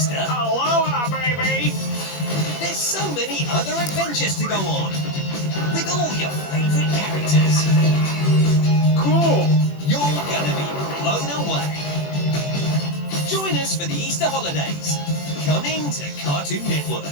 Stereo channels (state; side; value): late; right; 21 ms